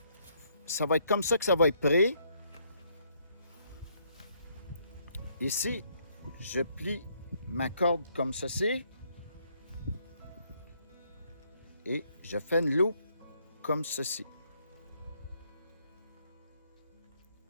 ça va être comme ça que ça va être prêt. Ici, je plie ma corde comme ceci. Et je fais une loupe comme ceci.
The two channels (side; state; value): both; inverted; correlation -0.70